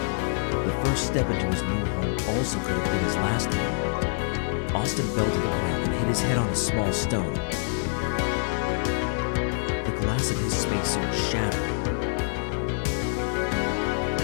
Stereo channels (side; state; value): right; silent; digital silence